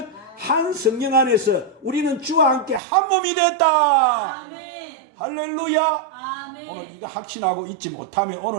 한 성령 안에서 우리는 주와 함께 한 몸이 됐다. 아멘. 할렐루야. 아멘. 오늘 이거 확신하고 있지 못하면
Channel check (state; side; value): drops out; left; at 2.8 s